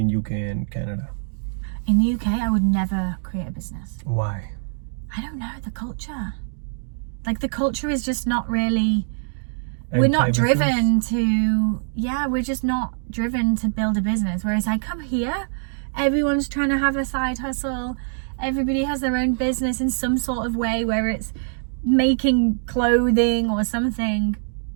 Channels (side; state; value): left; silent; digital silence